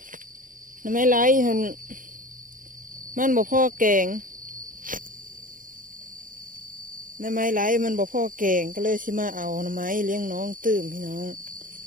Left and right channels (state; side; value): late; left; 0.39 ms